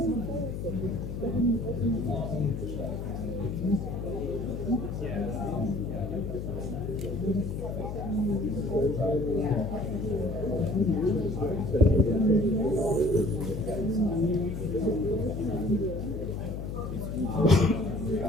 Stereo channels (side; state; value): left; noise; hum, 5 dB below the sound